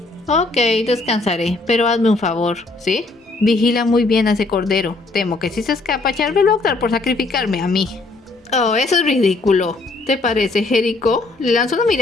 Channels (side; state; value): right; quieter; 3.4 dB